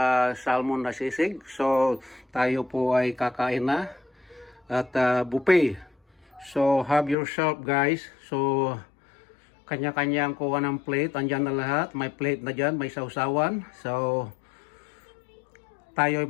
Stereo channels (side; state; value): right; drops out; at 7.2 s